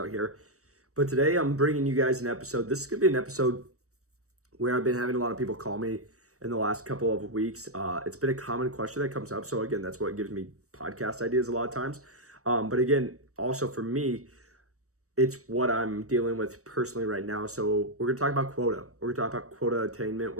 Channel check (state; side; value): late; left; 0.65 ms